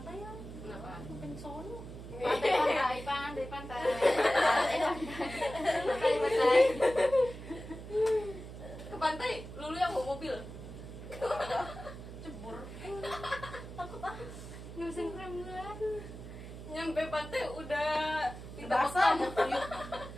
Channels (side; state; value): right; noise; hum, 12 dB below the sound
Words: ya. Kenapa? Bukan sono. Pantai, pantai, pantai. Pantai, pantai. Ke pantai, lulu yang bawa mobil. Cebur. Takut ah. Nggak bisa ngerem. Nyampe pantai udah minta Basah. bekam.